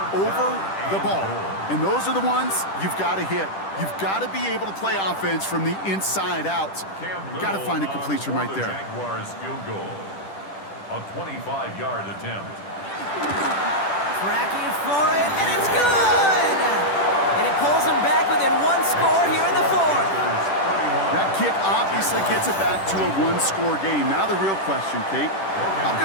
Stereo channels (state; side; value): late; right; 10 ms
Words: over the ball. And those are the ones you've got to hit. You've got to be able to play offense from the inside out. Got to find a completion right there. Jaguars field goal. A 25-yard attempt. Tracking for it, and it's good! And it pulls them back within 1 score here in the 4th. That kick obviously gets it back to a 1-score game. Now the real question, Kate, how